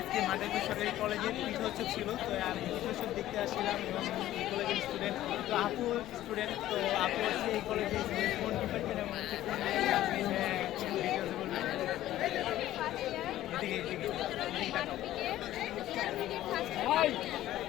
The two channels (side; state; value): right; quieter; 14.0 dB